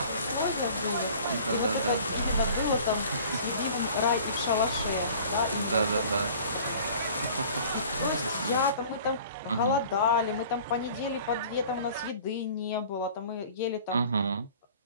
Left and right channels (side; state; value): both; inverted; correlation -0.47